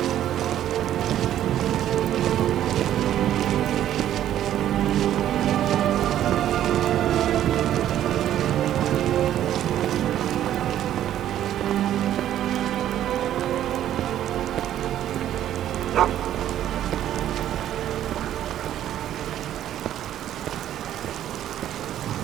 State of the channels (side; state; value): left; quieter; 11.6 dB